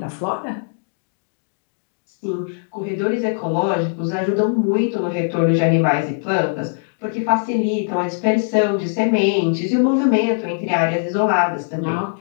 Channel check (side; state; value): right; silent; digital silence